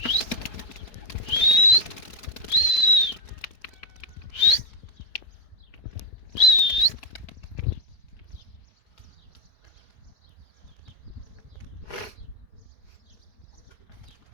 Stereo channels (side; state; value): right; late; 4.7 ms